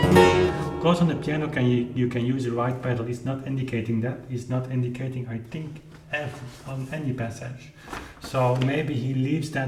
Of course, on the piano you can use the right pedal. It's not indicating that. It's not indicating, I think, F on any passage. So maybe he leaves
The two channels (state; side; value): identical; both; correlation 1.00